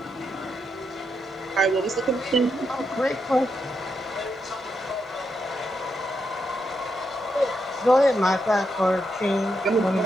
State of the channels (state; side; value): normal; both; correlation 0.82